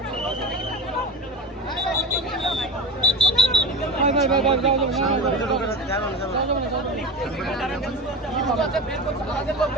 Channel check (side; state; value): both; normal; correlation 0.28